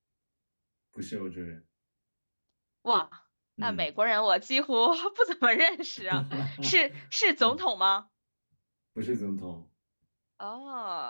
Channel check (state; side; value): inverted; both; correlation -1.00